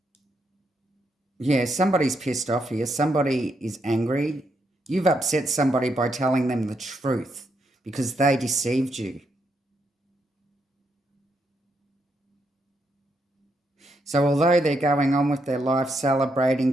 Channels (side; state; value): both; normal; correlation 0.79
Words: yeah, somebody's pissed off here. Somebody is angry. You've upset somebody by telling them the truth because they deceived you. So although they're going on with their life,